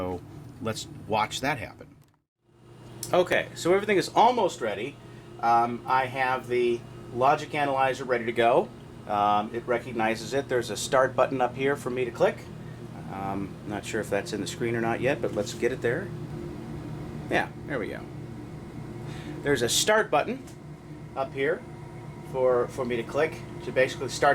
let's watch that happen. Okay, so everything is almost ready. I have the logic analyzer ready to go. It recognizes it. There's a start button up here for me to click. Not sure if that's in the screen or not yet, but let's get it there. Yeah, there we go. There's a start button up here for me to click. So basically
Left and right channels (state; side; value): identical; both; correlation 1.00